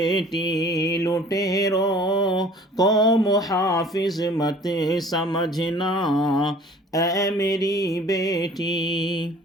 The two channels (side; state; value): both; normal; correlation 0.49